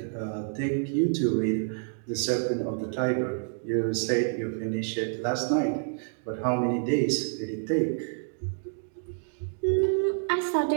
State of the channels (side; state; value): left; silent; digital silence